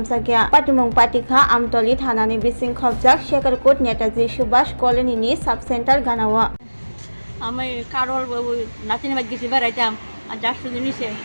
Patimung Patikha Amtali Thana ni Bising Khobjak Chakrajwk Netaji Subhash Colony ni Subcenter Ganawa আমি কারোর নাতিনি বাদ গেছি বেড়াইতাম আর যার শুধু নিছে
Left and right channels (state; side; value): inverted; both; correlation -1.00